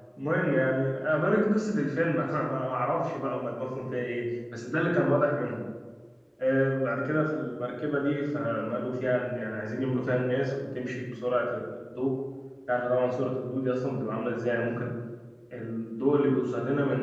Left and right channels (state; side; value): identical; both; correlation 1.00